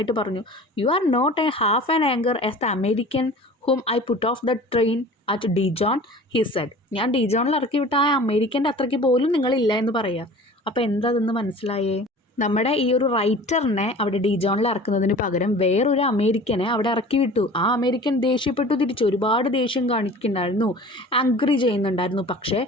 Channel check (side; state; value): both; normal; correlation 0.42